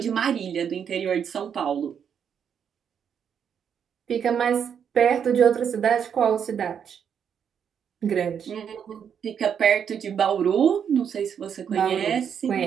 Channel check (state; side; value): quieter; left; 7.8 dB